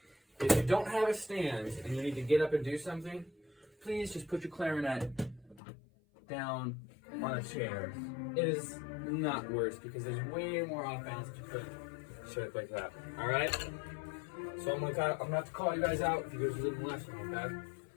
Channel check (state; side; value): drops out; right; at 5.6 s